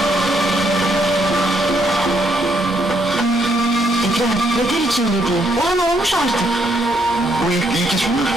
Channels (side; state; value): both; normal; correlation 0.73